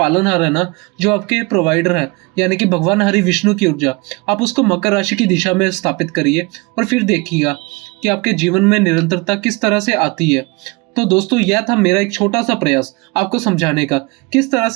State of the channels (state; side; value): quieter; left; 26.4 dB